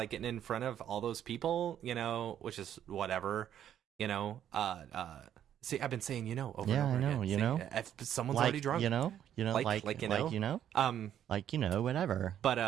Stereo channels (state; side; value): quieter; left; 10.3 dB